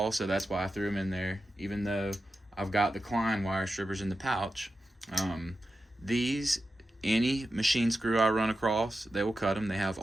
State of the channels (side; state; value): both; normal; correlation 0.91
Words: so that's why I threw them in there, even though I've got the Klein wire strippers in the pouch. These, any machine screw I run across, they will cut them. They have